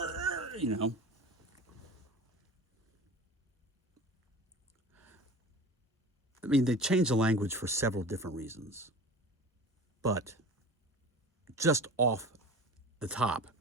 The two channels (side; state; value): both; normal; correlation 0.37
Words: you know. I mean, they changed the language for several different reasons. But just off the top,